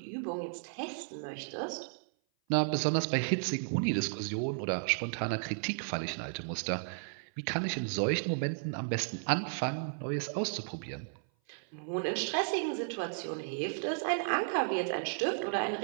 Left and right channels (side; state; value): left; silent; 55 dB below the other